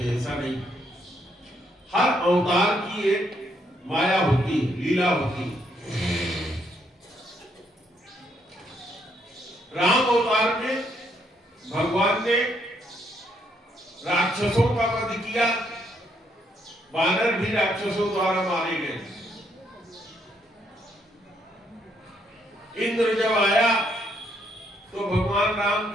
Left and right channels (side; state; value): both; normal; correlation 0.73